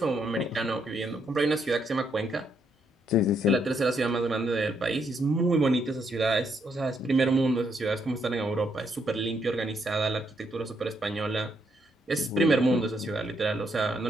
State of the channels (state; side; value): normal; both; correlation 0.75